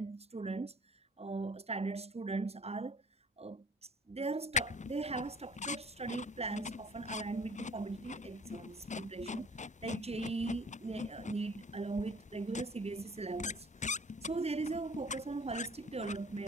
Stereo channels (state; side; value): normal; both; correlation 0.52